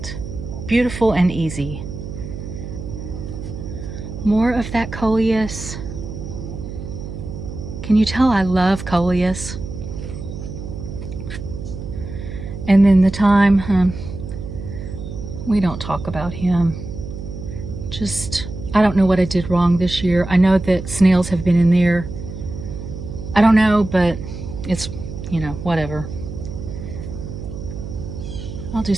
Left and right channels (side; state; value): right; noise; hum, 9 dB below the sound